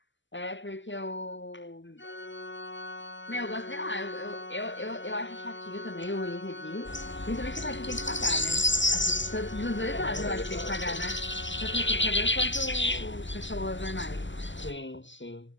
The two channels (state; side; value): late; right; 0.54 ms